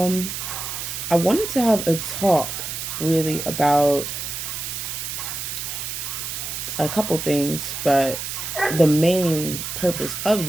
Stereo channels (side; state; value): right; noise; hiss, 5 dB below the sound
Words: I wanted to have a talk really about a couple things, but the main purpose of